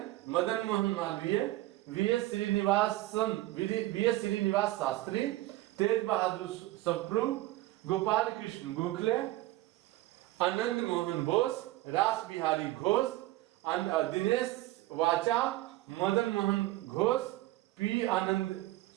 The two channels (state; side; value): quieter; left; 17.3 dB